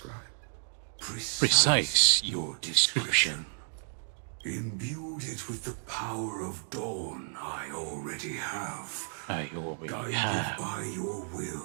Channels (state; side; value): silent; left; digital silence